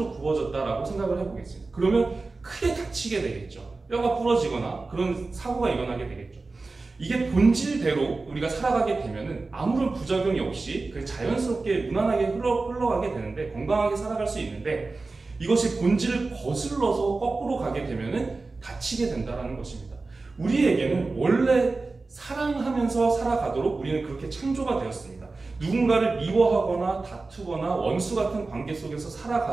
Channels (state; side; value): quieter; left; 3.6 dB